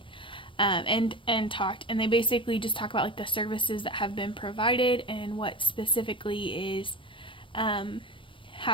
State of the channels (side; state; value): right; late; 0.25 ms